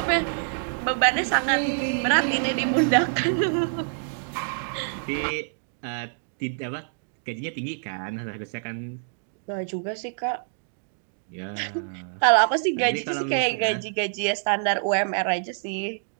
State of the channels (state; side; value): silent; left; digital silence